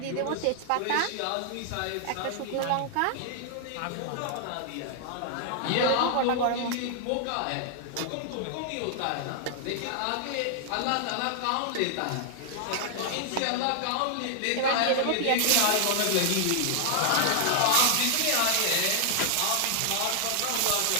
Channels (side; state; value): both; different; correlation 0.00